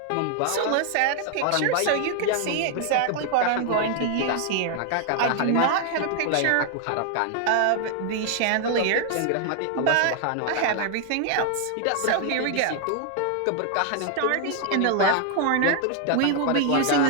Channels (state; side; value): different; both; correlation 0.00